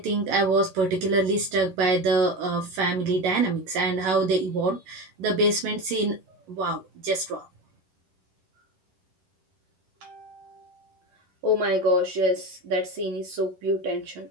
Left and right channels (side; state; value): left; late; 11 ms